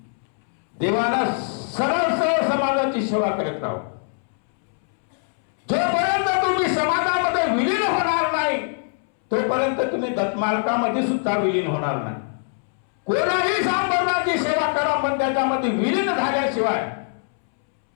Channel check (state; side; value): silent; right; 63 dB below the other